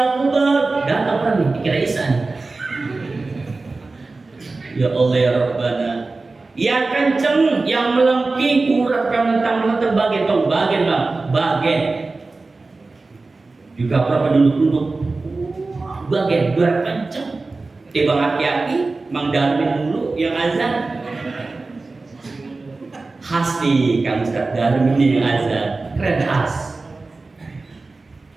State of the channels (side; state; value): left; quieter; 3.6 dB